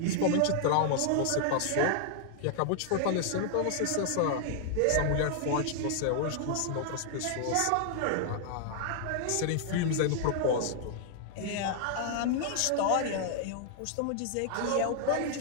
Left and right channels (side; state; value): both; different; correlation -0.01